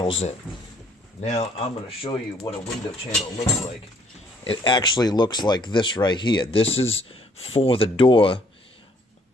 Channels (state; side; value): normal; both; correlation 0.64